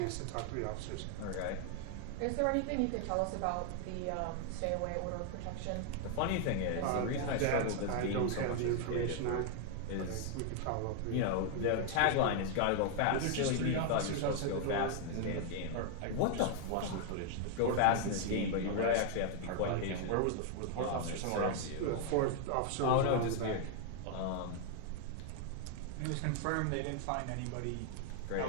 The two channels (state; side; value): different; both; correlation 0.00